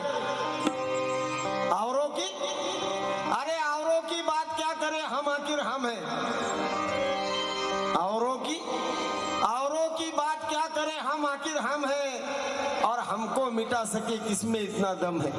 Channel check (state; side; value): identical; both; correlation 1.00